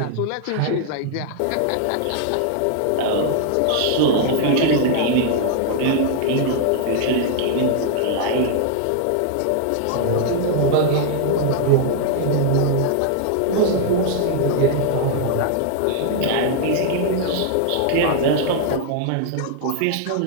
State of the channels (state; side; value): different; both; correlation -0.01